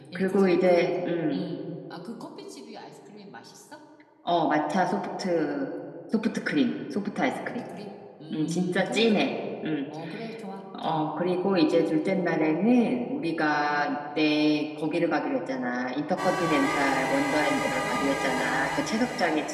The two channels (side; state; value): both; identical; correlation 1.00